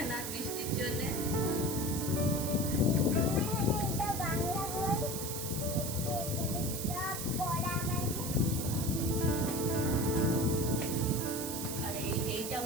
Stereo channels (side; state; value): right; noise; hiss, 5 dB below the sound